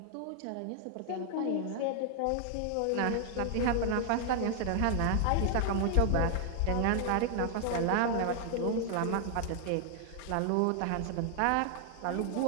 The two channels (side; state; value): both; different; correlation 0.00